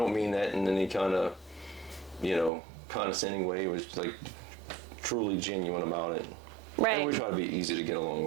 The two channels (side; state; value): left; drops out; at 2.5 s